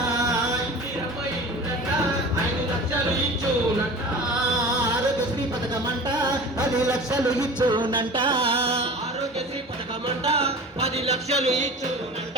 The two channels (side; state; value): both; normal; correlation 0.38